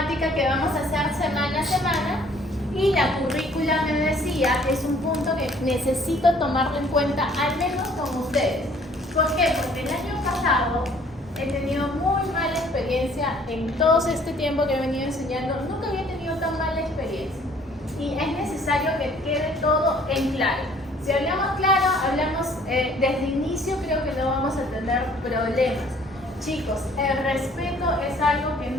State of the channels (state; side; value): normal; both; correlation 0.57